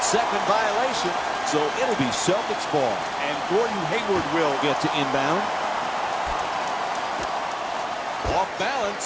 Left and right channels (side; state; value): both; identical; correlation 1.00